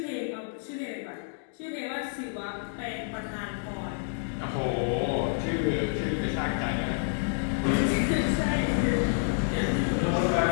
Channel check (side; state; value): right; silent; digital silence